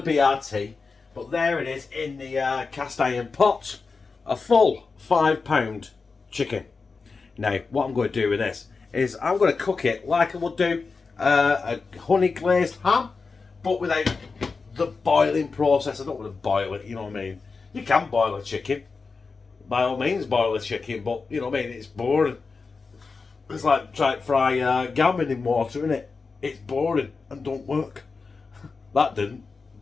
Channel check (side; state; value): right; quieter; 4.5 dB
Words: be our tea, but there it is in the cast iron pot. A full £5 chicken. Now, what I'm going to do with this is I'm going to cook it like I would do a honey glazed ham, but without the boiling process. I don't want to boil it, you know what I mean? You can boil a chicken. By all means, boil a chicken, but you know what I mean? It's boring. It's like trying to fry gammon in water, isn't it? It's boring and don't work. That didn't.